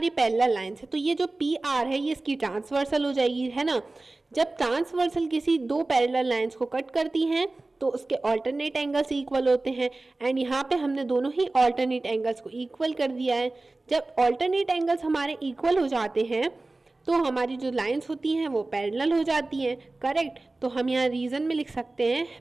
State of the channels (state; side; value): quieter; left; 3.1 dB